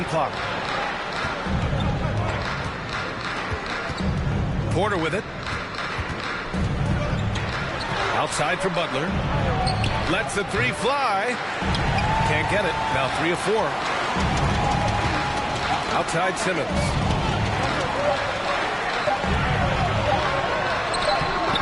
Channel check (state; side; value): identical; both; correlation 1.00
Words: clock. Porter with it. Outside for Butler. Lets the 3 fly. Can't get it. Now 3 of 4. Outside Simmons.